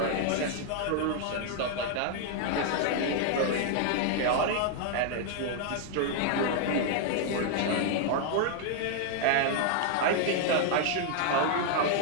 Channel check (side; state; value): both; different; correlation 0.00